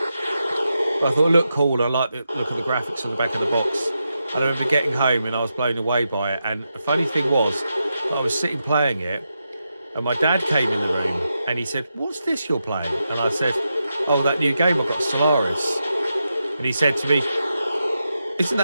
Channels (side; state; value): both; inverted; correlation -0.87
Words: but I thought it looked cool. I liked the look of the graphics on the back of the box. And I remember getting home and I was blown away by it. And the funny thing was, I was sitting playing it, and my dad came in the room and he said, "What's this you're playing?" And I said, "Oh, that new game I got, Stellaris." And he said to me, "Isn't